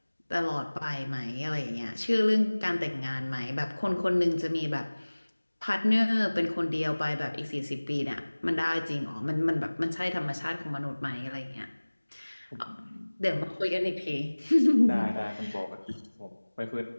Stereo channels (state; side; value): inverted; both; correlation -1.00